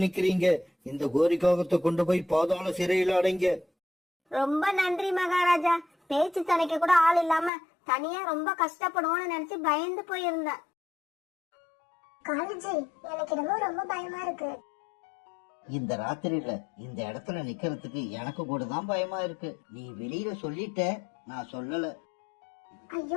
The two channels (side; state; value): right; drops out; at 7.5 s